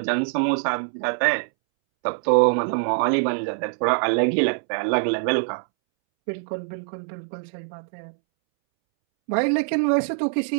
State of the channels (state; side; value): silent; left; 63 dB below the other